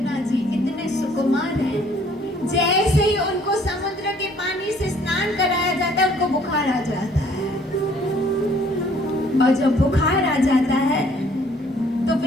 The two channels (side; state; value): both; normal; correlation 0.60